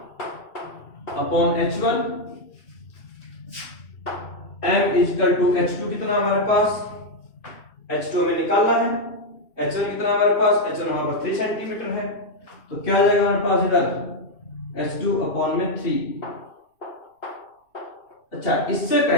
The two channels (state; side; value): late; right; 2.6 ms